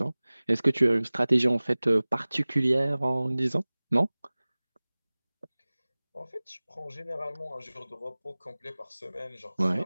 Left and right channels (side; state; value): both; inverted; correlation -0.99